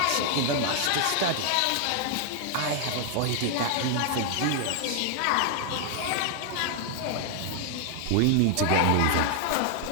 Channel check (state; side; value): different; both; correlation 0.00